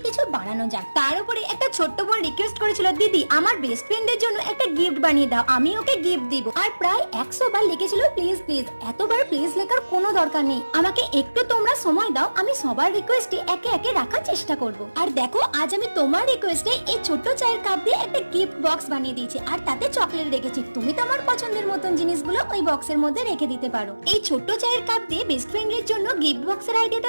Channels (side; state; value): both; inverted; correlation -1.00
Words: কিছু বানানো যাক। তার উপরে একটা ছোট্ট বোন রিকোয়েস্ট করেছিল, দিদি আমার বেস্ট ফ্রেন্ডের জন্য একটা গিফট বানিয়ে দাও, আমি ওকে গিফট দিব। আর প্রায় 100 বার লিখেছিল প্লিজ প্লিজ। এতবার প্লিজ লেখার কোনো দরকার নেই, আমাকে একটু তোমরা সময় দাও, আমি সবার রিকোয়েস্টে একে একে রাখার চেষ্টা করব। আর দেখো, আজ আমি তোমার রিকোয়েস্টে এই ছোট্ট চায়ের কাপ দিয়ে একটা গিফট বক্স বানিয়ে দিয়েছি, আর তাতে চকলেট রেখেছি। তুমি তোমার পছন্দের মতন জিনিসগুলো ওই বক্সের মধ্যে রেখে দিতে পারো। এই ছোট্ট চায়ের কাপ দিয়ে বেস্ট ফ্রেন্ডের জন্য গিফট বক্সের